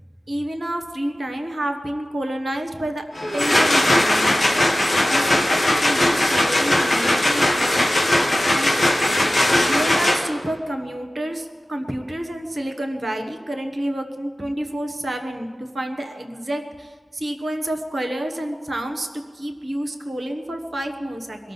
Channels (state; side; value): normal; both; correlation 0.96